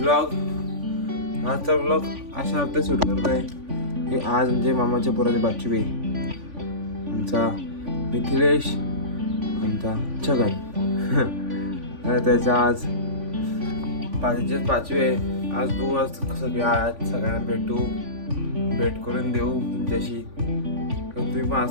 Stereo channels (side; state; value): left; late; 3.5 ms